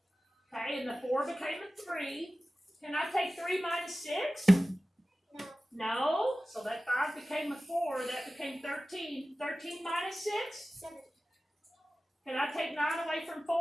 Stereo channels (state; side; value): normal; both; correlation 0.96